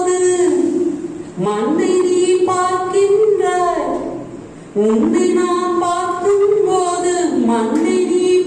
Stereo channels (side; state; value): both; identical; correlation 1.00